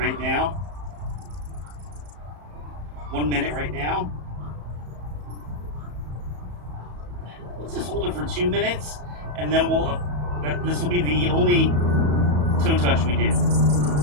now. 1 minute right now. Let's just hold it for 2 minutes, and then this will be the only toe touch we do.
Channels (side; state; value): left; late; 34 ms